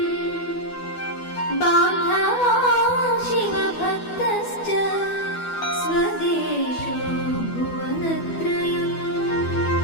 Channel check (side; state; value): right; late; 12 ms